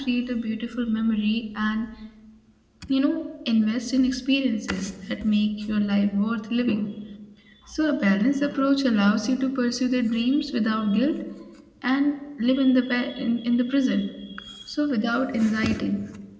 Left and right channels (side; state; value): both; identical; correlation 1.00